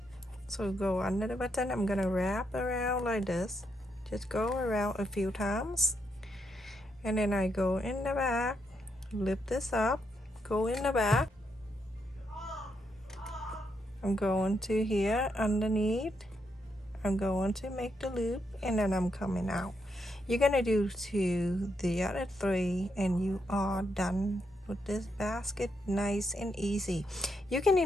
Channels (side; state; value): both; normal; correlation 0.79